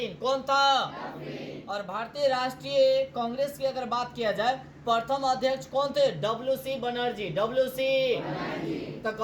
कौन था, और भारतीय राष्ट्रीय कांग्रेस की अगर बात किया जाए प्रथम अध्यक्ष कौन थे, WC बनर्जी, WC। तो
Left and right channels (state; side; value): identical; both; correlation 1.00